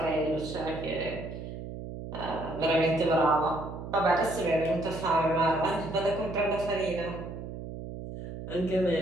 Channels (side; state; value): right; noise; hum, 9 dB below the sound